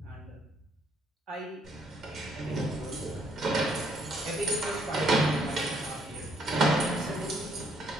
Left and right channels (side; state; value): both; normal; correlation 0.69